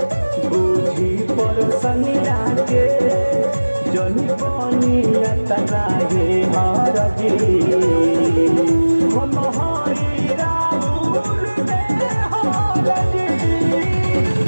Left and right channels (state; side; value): inverted; both; correlation -1.00